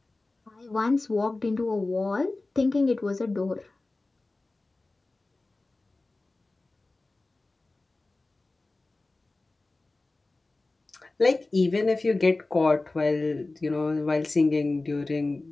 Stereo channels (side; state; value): right; quieter; 3.2 dB